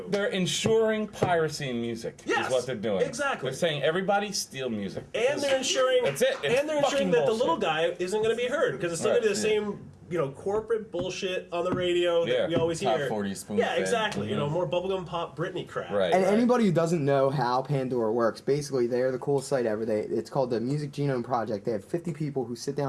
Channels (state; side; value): identical; both; correlation 1.00